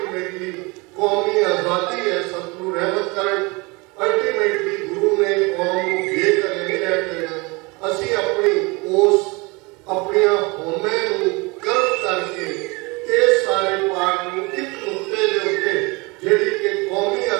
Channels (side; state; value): left; quieter; 26.5 dB